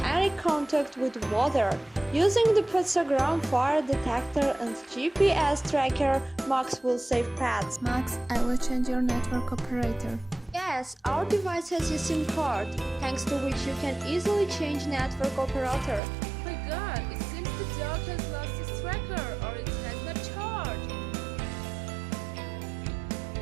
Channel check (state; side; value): drops out; left; at 16.0 s